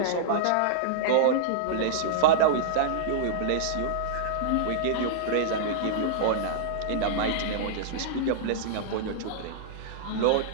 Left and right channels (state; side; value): different; both; correlation -0.02